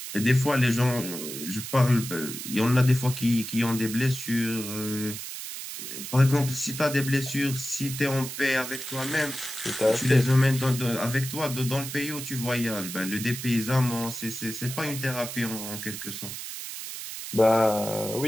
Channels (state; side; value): noise; right; hiss, 8 dB below the sound